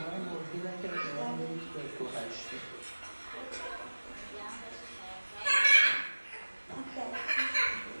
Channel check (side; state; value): both; inverted; correlation -1.00